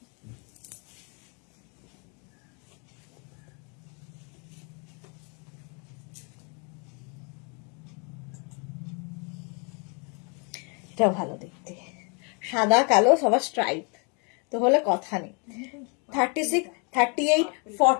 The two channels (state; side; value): quieter; right; 35.2 dB